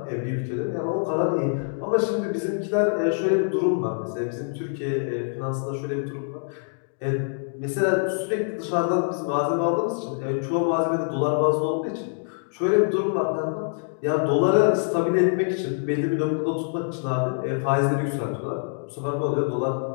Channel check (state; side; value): silent; right; digital silence